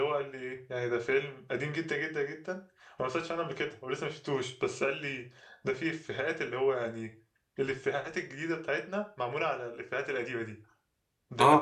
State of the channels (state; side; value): identical; both; correlation 1.00